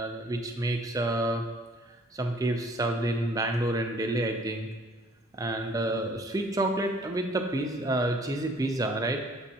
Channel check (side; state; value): both; normal; correlation 0.58